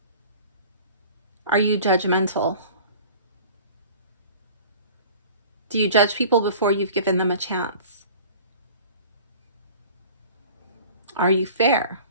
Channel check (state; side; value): inverted; both; correlation -0.44